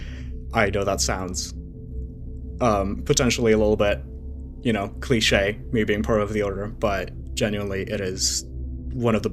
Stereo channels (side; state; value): both; identical; correlation 1.00